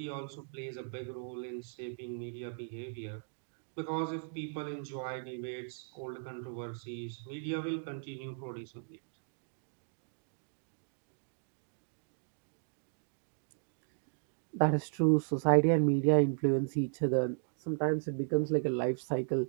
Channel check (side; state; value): left; silent; digital silence